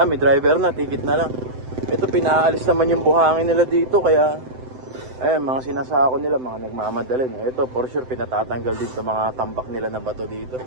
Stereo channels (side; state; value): left; late; 7.8 ms